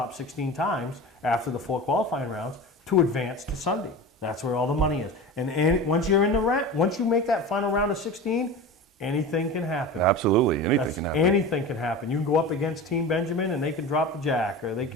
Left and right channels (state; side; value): normal; both; correlation 0.31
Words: 16 times after the 4 qualifying rounds to advance to Sunday. That's where all the money is. And once you're in once you make that final round of 16, anything can happen. Absolutely, anything can happen. Anything can happen. You can go up against Team Benjamin and they can drop the jack, or they